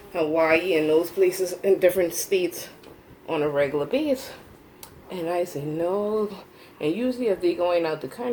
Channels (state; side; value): identical; both; correlation 1.00